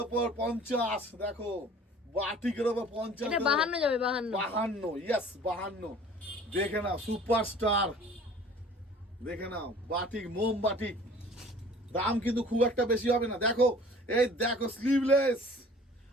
ওপর 50, দেখো বাটিকের ওপর 50, এটা 52 যাবে, 52, ইয়েস 52। দেখে নাও সুপারস্টার, দেখে নাও বাটিক, মোম বাটিক। দাম কিন্তু খুব একটা বেশি হবে না। দেখো এই দেখো স্লিভলেস,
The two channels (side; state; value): both; normal; correlation 0.48